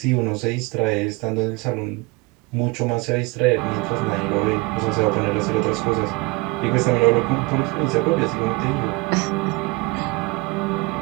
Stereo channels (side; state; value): left; quieter; 24.8 dB